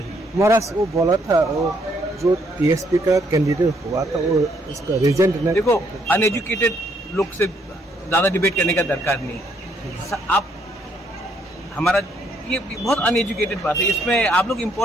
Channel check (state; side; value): normal; both; correlation 0.70